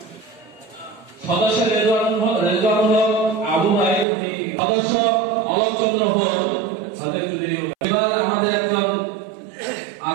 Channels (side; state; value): left; drops out; at 4.0 s